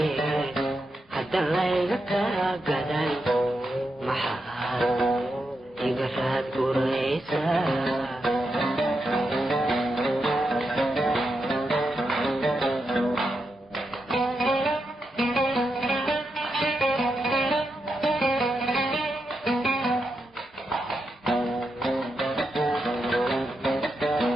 hadda layga ka gaday maxaa igaraad guraysa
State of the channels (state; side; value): normal; both; correlation 0.85